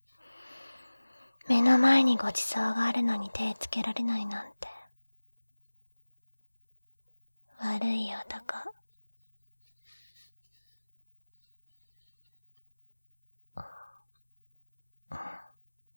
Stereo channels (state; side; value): inverted; both; correlation -1.00